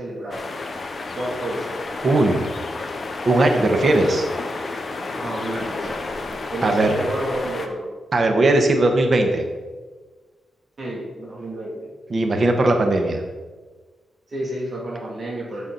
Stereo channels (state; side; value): normal; both; correlation 0.86